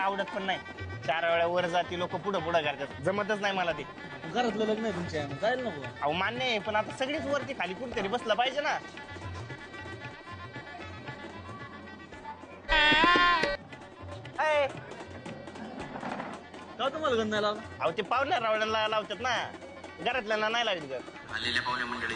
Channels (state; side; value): identical; both; correlation 1.00